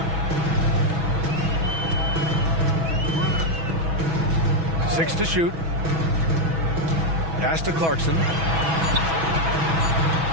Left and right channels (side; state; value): left; late; 6.1 ms